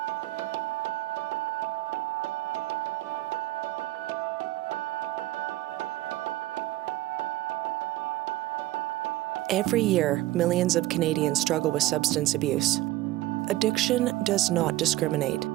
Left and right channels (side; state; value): left; quieter; 16.6 dB